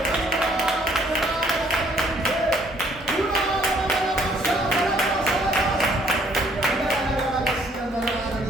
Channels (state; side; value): normal; both; correlation 0.64